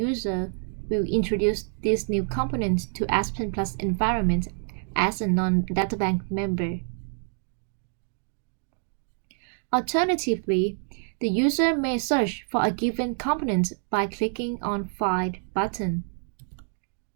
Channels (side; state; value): left; silent; 60 dB below the other